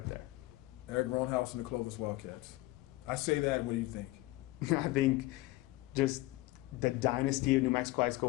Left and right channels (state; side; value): quieter; right; 19.2 dB